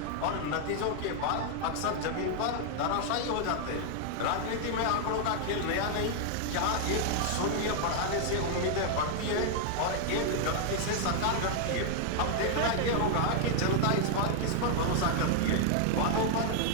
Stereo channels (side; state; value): both; different; correlation 0.00